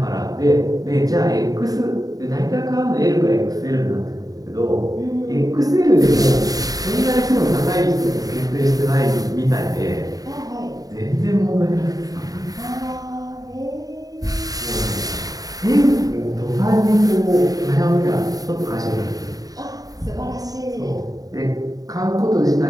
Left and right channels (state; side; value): late; left; 0.18 ms